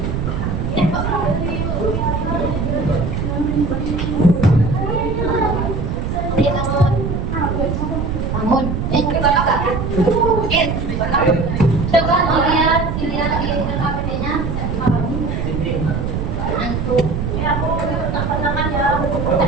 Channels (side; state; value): right; noise; rumble, 2 dB below the sound